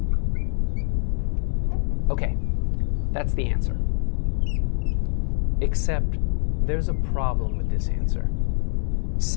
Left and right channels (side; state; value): right; silent; 57 dB below the other